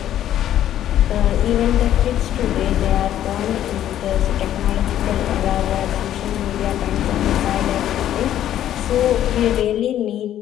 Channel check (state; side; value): quieter; right; 11.6 dB